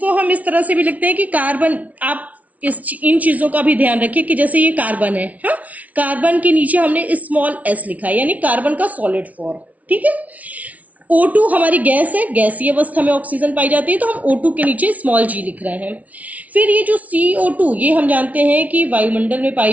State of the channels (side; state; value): left; late; 0.070 ms